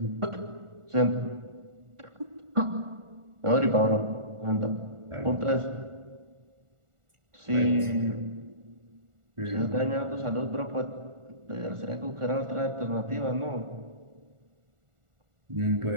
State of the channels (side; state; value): left; late; 1.4 ms